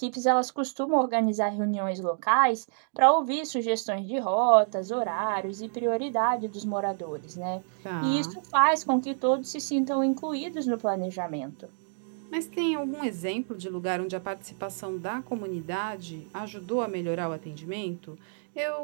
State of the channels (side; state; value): left; silent; digital silence